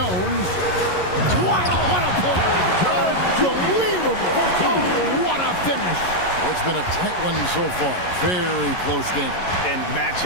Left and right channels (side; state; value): right; late; 11 ms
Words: Wow, what a play! Unbelievable! Oh, what a finish! It's been a tight one so far. Very close game. And